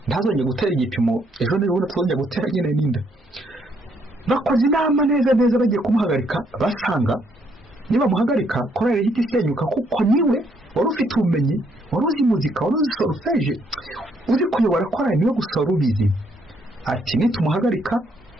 ntazongeye gutera igipimo ejo n'ubundi tuzongeye gutera nyine n'inda. Bakoze inama neza bagiye kumuhagarika basanga niba muhagarika korali ihita isenyuka kuko niwe wari ufite ubumenyi wari uzi muzika wari uzi solfège uzi kuyobora korali niwe gusa ubizi ati nitumuhagarika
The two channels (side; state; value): both; normal; correlation 0.71